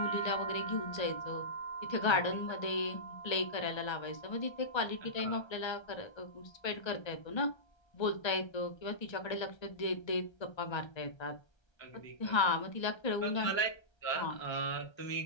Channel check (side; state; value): right; late; 1.3 ms